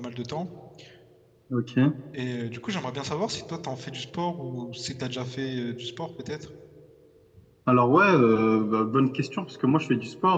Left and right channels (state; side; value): identical; both; correlation 1.00